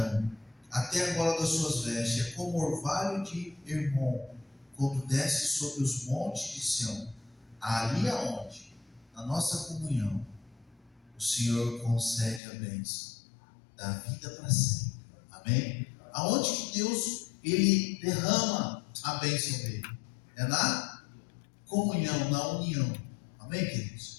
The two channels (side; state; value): right; drops out; at 12.4 s